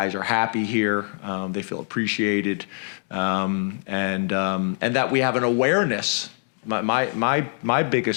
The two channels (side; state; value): right; silent; 63 dB below the other